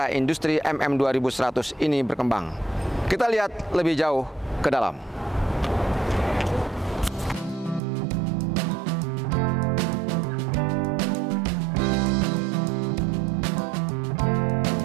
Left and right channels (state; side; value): drops out; left; at 7.8 s